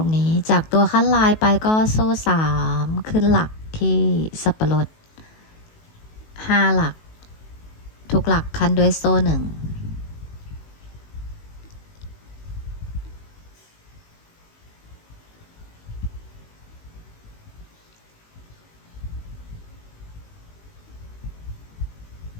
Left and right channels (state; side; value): late; right; 19 ms